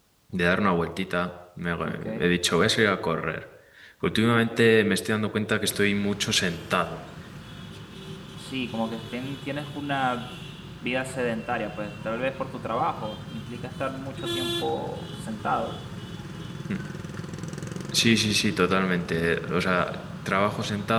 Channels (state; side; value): identical; both; correlation 1.00